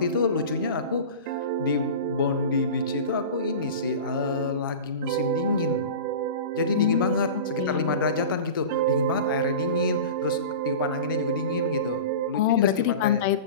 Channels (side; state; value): both; inverted; correlation -0.32